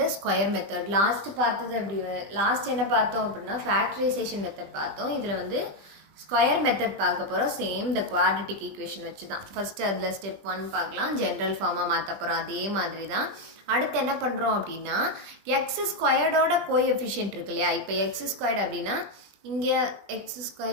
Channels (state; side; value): late; left; 20 ms